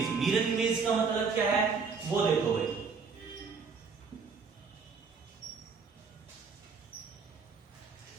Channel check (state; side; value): quieter; left; 5.2 dB